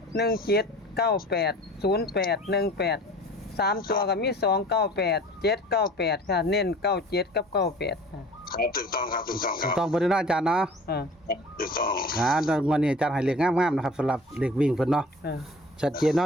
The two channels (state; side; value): normal; both; correlation 0.45